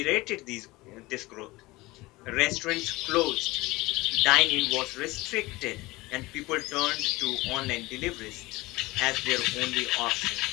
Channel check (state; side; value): quieter; right; 21.0 dB